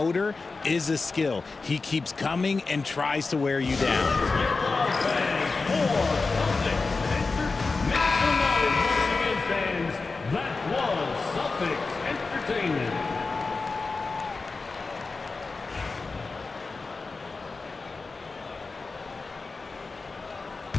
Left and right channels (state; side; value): quieter; right; 4.0 dB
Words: is a skill. He keeps coming and tries to wear you down. That was Celtics Entertainment.